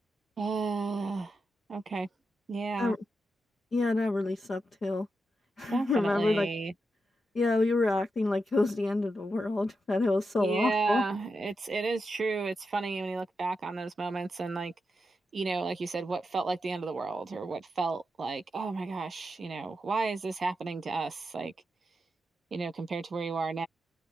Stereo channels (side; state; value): both; normal; correlation 0.87